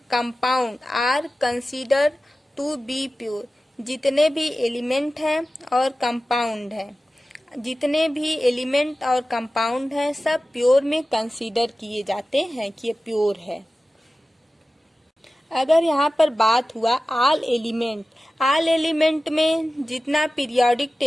compound are considered to be pure. जितने भी एलिमेंट हैं और कंपाउंड हैं, जितने भी एलिमेंट और कंपाउंड हैं सब प्योर में कंसीडर किए जाते हैं कि ये प्योर है। अगर यहाँ पर बात हुआ ऑल एलिमेंट, ऑल एलिमेंट में जितना पीरियोडिक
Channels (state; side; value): normal; both; correlation 0.95